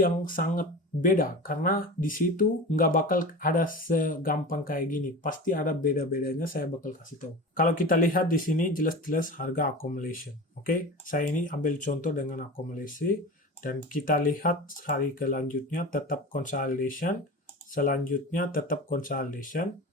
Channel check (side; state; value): both; normal; correlation 0.31